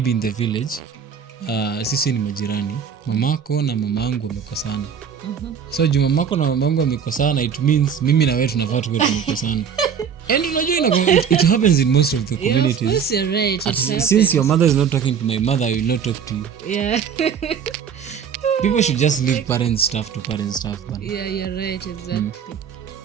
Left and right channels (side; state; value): left; quieter; 7.3 dB